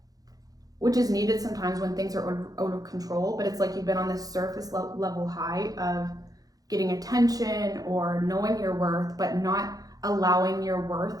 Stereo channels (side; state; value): left; late; 0.18 ms